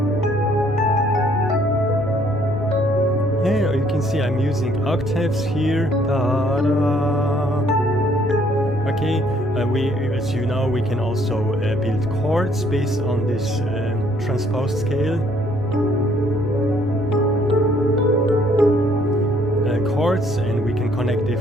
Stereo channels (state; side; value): normal; both; correlation 0.64